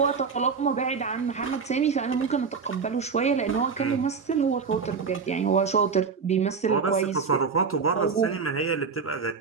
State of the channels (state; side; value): quieter; left; 5.4 dB